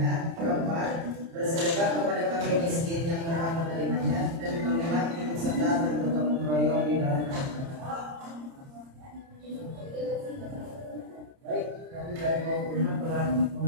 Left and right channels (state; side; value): late; left; 30 ms